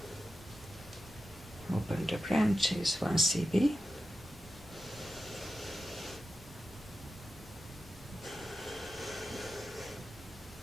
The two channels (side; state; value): both; normal; correlation 0.91